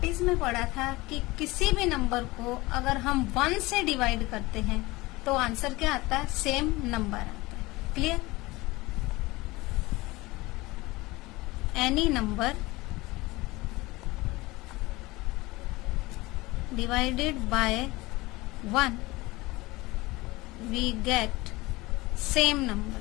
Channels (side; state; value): right; quieter; 21.1 dB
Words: में पढ़ा था कि किसी भी नंबर को अगर हम 1 से डिवाइड करते हैं तो आंसर क्या आता है, सेम नंबर आता है. Clear? Any number divided by 1 we get same number